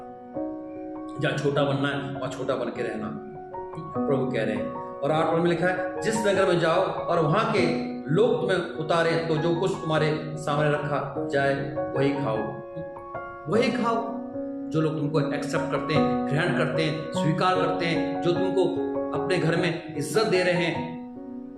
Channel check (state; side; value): identical; both; correlation 1.00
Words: जहां छोटा बनना है वहां छोटा बन के रहना, प्रभु कह रहे हैं। और 8 पद में लिखा है, जिस नगर में जाओ और वहां के लोग तुम्हें उतारे तो जो कुछ तुम्हारे सामने रखा जाए वही खाओ, वही खाओ। जो लोग तुमको एक्सेप्ट करते हैं, ग्रहण करते हैं, स्वीकार करते हैं, जो तुमको अपने घर में इज्जत दे रहे हैं,